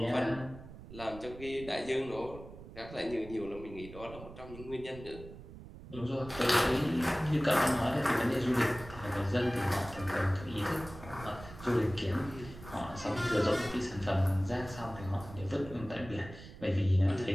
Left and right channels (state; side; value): noise; right; rumble, 15 dB below the sound